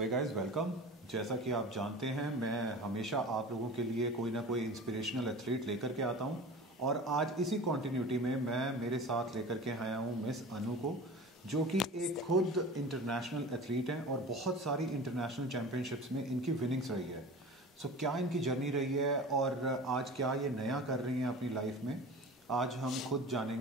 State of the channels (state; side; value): normal; both; correlation 0.36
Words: hey guys welcome. जैसा कि आप जानते हैं मैं हमेशा आप लोगों के लिए कोई ना कोई इंस्पिरेशनल एथलीट लेकर के आता हूं और आज इसी कॉन्टिन्यूटी में मैं मेरे साथ लेकर के आया हूं मिस अनु को, जो कि एक खुद इंटरनेशनल एथलीट हैं और बहुत सारी इंटरनेशनल चैम्पियनशिप्स में इनकी विनिंग्स रही है। सो क्या इनकी जर्नी रही है और आज क्या ये नया कर रही हैं अपनी लाइफ में, आज हम खुद